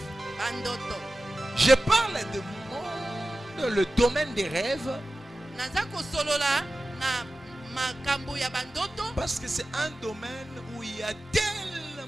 Je parle de monde, le domaine des rêves. Parce que c'est un domaine où il y a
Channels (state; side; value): normal; both; correlation 0.95